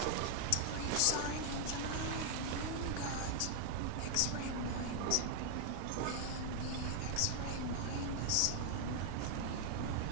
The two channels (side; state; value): both; different; correlation 0.00